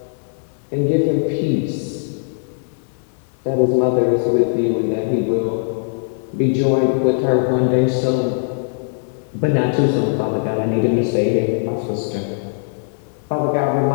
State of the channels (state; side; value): silent; right; digital silence